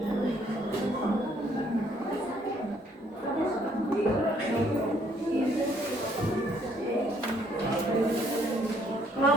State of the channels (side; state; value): both; normal; correlation 0.66